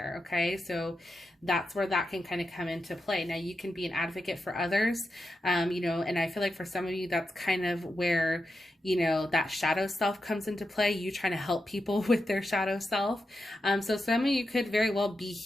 Okay. So that's where that can kind of come into play. Now you can be an advocate for others, you know, and I feel like for some of you, that's kind of where, you know, that shadow self comes into play. You trying to help people with their shadow self. So some of you could very well be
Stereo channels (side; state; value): both; normal; correlation 0.88